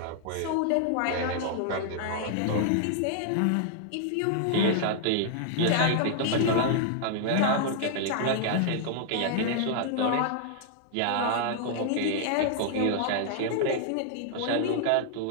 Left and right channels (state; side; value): different; both; correlation -0.01